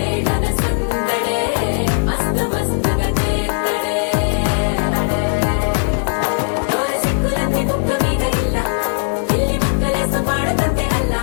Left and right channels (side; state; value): right; silent; digital silence